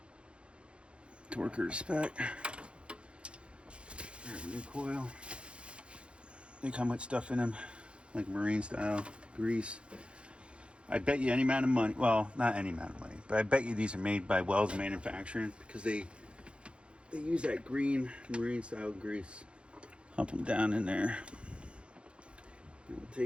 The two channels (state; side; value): late; left; 0.058 ms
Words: Torquer spec. There's a new coil. They come with stuff in them, like marine style grease. I bet you any amount of money, well, not any amount of money, but I bet you these are made by Wells Manufacturing, because they use that green marine style grease. Pump them down in there. And we'll